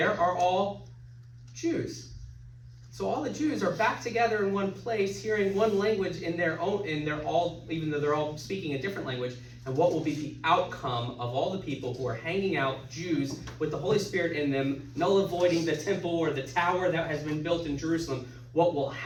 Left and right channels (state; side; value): identical; both; correlation 1.00